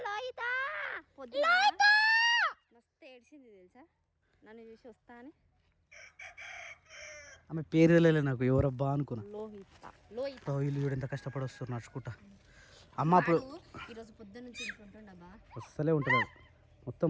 మస్తు ఏడ్చింది తెలుసా నన్ను చూసి వస్తా అని. ఆమె పేరు తెలియలే నాకు, ఎవరబ్బా అనుకున్నా. లోహిత వీళ్ళు చూడు ఎంత కష్టపడి వస్తారు నడుచుకుంటా. అమ్మ అప్పుడు ఈరోజు పొద్దున్న నుంచి ఇంట్లో ఉంటుండబ్బా. అస్సలే ఉంటుంది, మొత్తం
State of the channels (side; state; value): both; identical; correlation 1.00